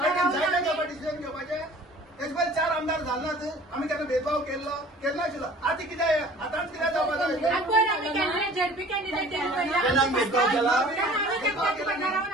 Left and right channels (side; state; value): both; normal; correlation 0.48